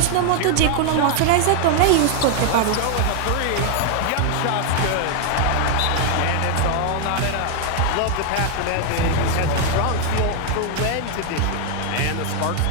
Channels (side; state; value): both; different; correlation 0.00